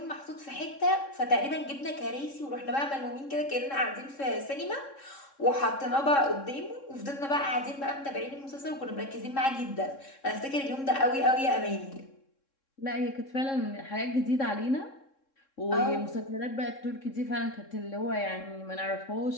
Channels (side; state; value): right; late; 3.7 ms